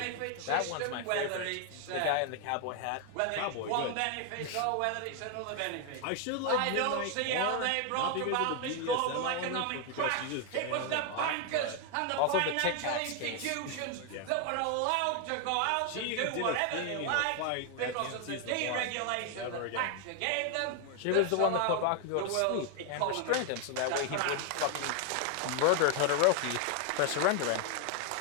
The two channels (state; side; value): different; both; correlation 0.01